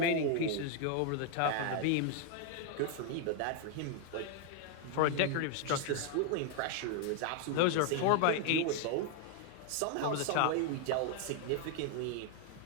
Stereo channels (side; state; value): both; different; correlation 0.00